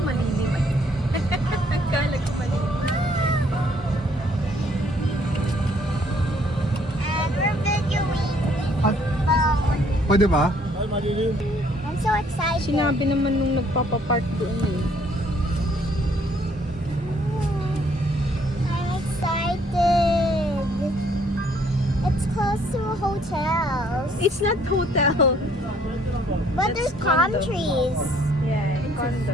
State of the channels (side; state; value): both; normal; correlation 0.64